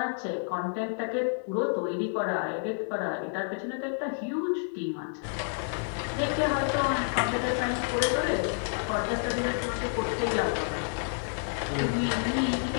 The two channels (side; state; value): right; silent; digital silence